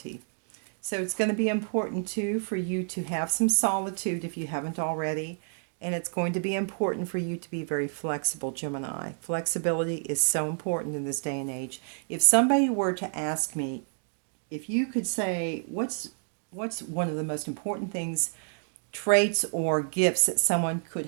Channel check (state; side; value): silent; left; 58 dB below the other